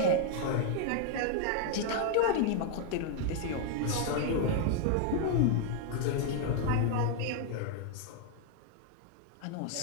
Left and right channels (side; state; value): both; different; correlation 0.00